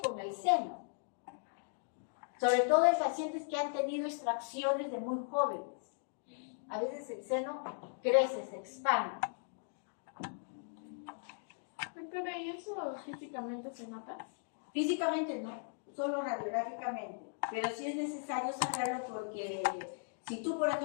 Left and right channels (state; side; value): silent; right; digital silence